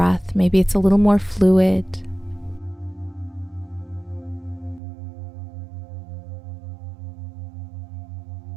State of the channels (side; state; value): left; drops out; at 4.8 s